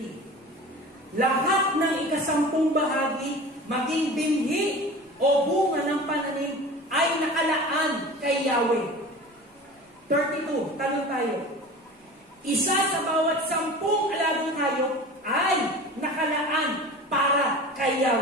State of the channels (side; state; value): both; normal; correlation 0.36